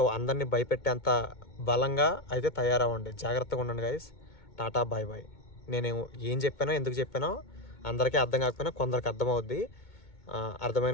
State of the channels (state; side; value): late; right; 2.2 ms